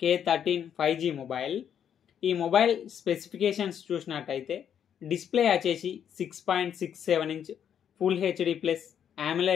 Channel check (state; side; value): quieter; right; 8.8 dB